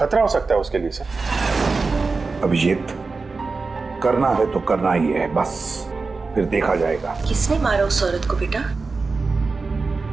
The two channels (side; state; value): left; quieter; 4.1 dB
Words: हो सकता है उसके लिए सर। अभिजीत, करना है तो करना ही है, बस फिर देखा जाएगा। किसने मारा उस औरत को बेटा?